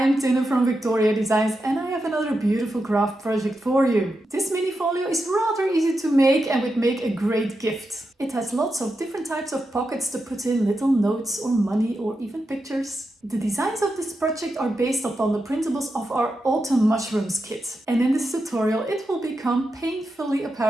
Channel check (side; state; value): both; normal; correlation 0.88